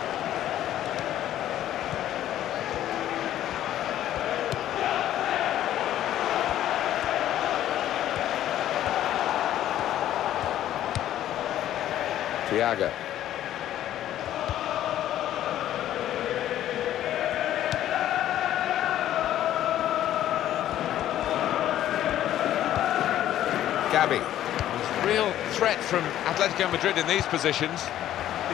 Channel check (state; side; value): quieter; right; 12.3 dB